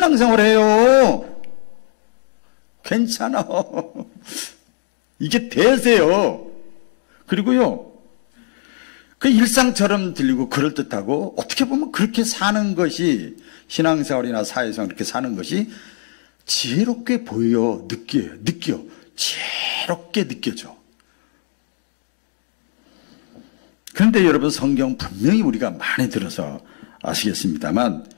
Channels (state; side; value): silent; right; digital silence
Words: 괜찮아. 이게 대세요. 그리고요, 그 일상처럼 들리고 그럴듯하고 어떻게 보면 그렇게 사는 것이, 신앙생활이나 사회생활 그렇게 사는 것이 지혜롭게 보여, 느껴. 지혜롭게 느껴져. 그런데 여러분, 성경 분명히 우리가 많이 들어서 아시겠습니다만